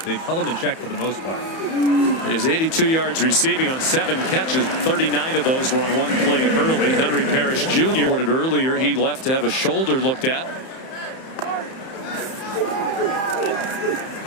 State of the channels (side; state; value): right; late; 31 ms